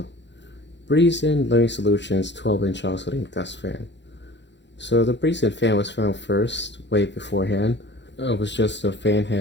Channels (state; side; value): late; right; 0.52 ms